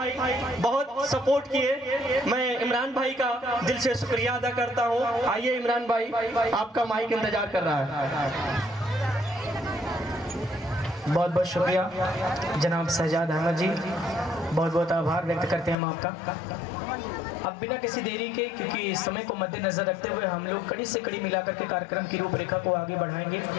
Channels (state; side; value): drops out; right; at 15.8 s